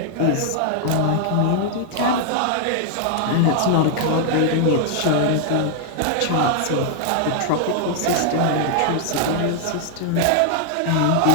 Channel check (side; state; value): both; different; correlation 0.00